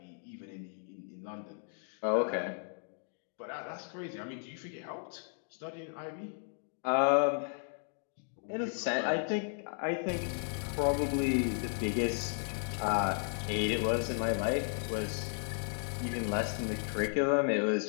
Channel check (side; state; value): right; silent; 55 dB below the other